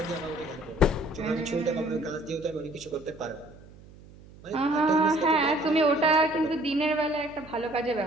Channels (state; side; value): noise; right; hum, 21 dB below the sound